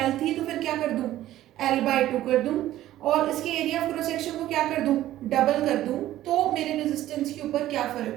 L थी तो फिर क्या कर दूं? L/2 कर दूं और इसके एरिया ऑफ क्रॉस सेक्शन को क्या कर दूं? डबल कर दूं, तो मेरे रेजिस्टेंस के ऊपर क्या फर्क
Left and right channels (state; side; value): quieter; left; 14.0 dB